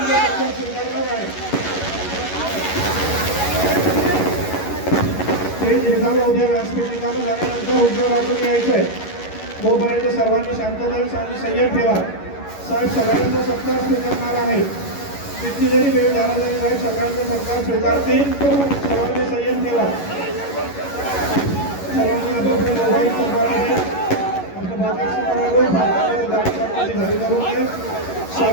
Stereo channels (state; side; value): late; right; 11 ms